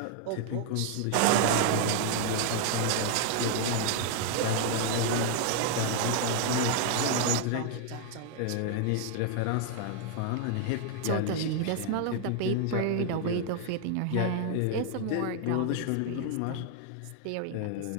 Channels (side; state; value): both; different; correlation 0.00